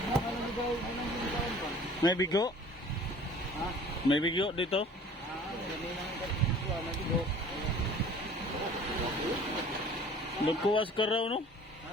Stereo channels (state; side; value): normal; both; correlation 0.48